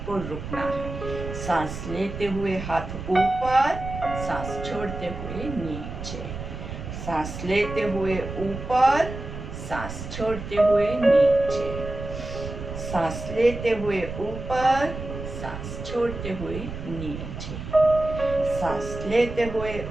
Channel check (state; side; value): noise; right; rumble, 8 dB below the sound